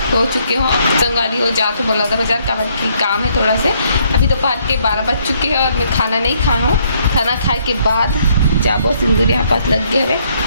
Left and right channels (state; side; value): inverted; both; correlation -0.68